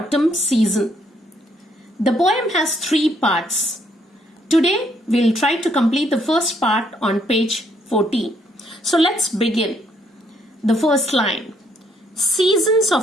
season. The poem has 3 parts. Today, we'll try to complete the first part on page 14. So let's begin. The first line. Seasons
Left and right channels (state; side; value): normal; both; correlation 0.70